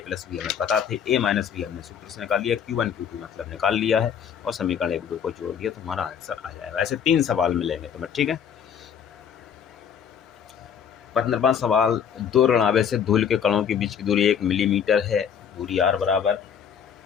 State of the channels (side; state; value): right; quieter; 8.0 dB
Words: B हमें पता थे, A - B हमने सूत्र से निकाल लिया, Q1 Q2 मतलब निकाल लिया है, और समीकरण 1 2 को जोड़ दिया तो हमारा आंसर आ जाएगा। ऐसे 3 सवाल मिलेंगे तुम्हें। ठीक है, 15वां सवाल, 2 ऋण आवेश से धूल के कणों के बीच की दूरी 1 मिलीमीटर है। दूरी r बराबर